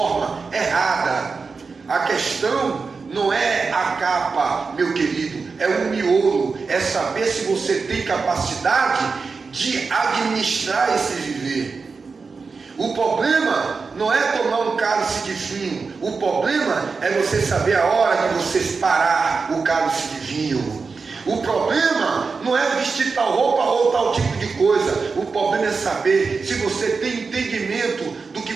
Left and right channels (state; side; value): quieter; left; 4.7 dB